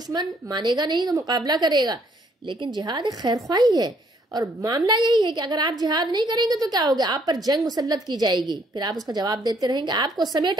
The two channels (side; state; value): both; normal; correlation 0.66